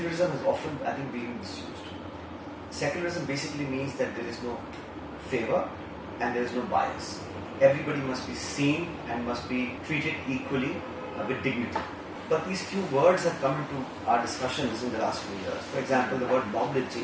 has often, I think, been misused. Secularism basically means that there is no favor and there is no bias. Everybody must be seen and must be treated equally with dignity. But these few words have come into our discussions in the last few years. For example, the word mob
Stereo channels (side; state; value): both; identical; correlation 1.00